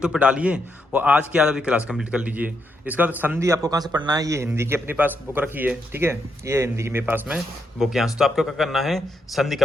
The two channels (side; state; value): both; normal; correlation 0.80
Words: पे डालिए और आज की आधा भी क्लास कंप्लीट कर लीजिए। इसका बाद संधि आपको कहाँ से पढ़ना है, ये हिंदी की अपने पास बुक रखी है, ठीक है, ये हिंदी की मेरे पास में बुक यहाँ से। तो आपको क्या करना है, संधि